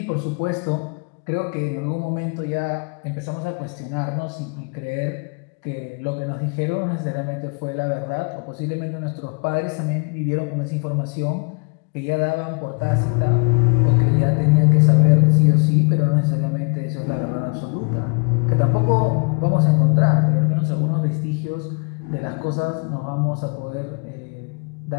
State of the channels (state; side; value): quieter; right; 37.3 dB